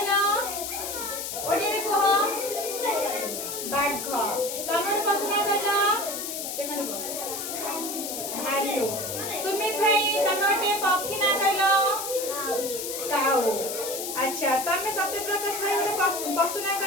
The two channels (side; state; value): left; noise; hiss, 5 dB below the sound